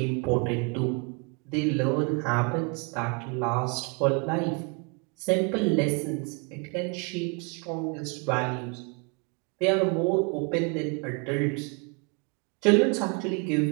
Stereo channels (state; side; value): quieter; left; 33.1 dB